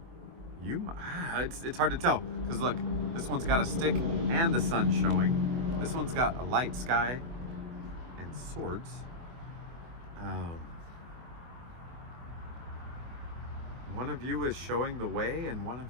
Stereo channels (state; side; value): late; left; 24 ms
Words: It's hard to tell, because look, this one's got a stick and the sun showing. This one's got a light sky and swords. One of you is showing the way, and one